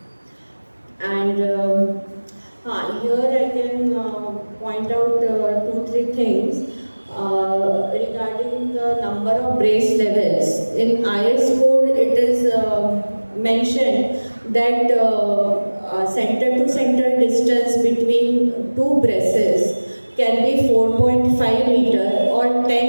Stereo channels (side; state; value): both; inverted; correlation -1.00